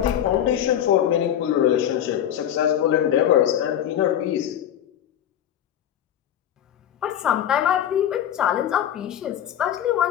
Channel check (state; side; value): quieter; right; 10.5 dB